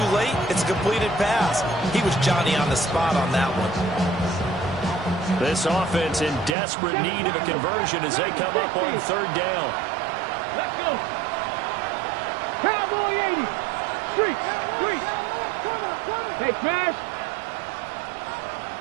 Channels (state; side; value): drops out; left; at 6.6 s